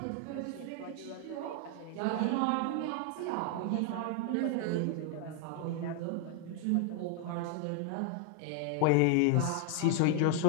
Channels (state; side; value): different; both; correlation 0.00